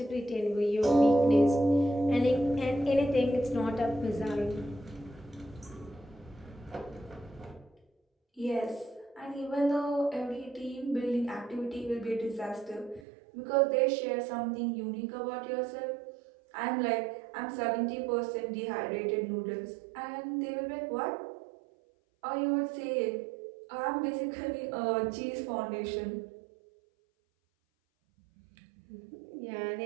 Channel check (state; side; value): drops out; left; at 13.1 s